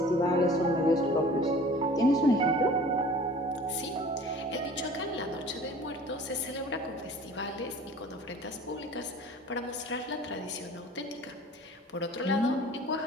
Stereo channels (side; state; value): both; normal; correlation 0.45